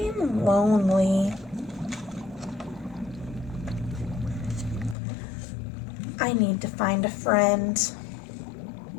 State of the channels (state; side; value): drops out; right; at 5.0 s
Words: lonely. I need to find a friend.